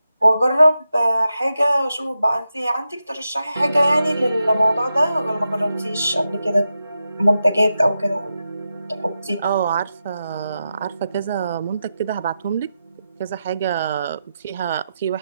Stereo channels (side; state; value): both; inverted; correlation -0.89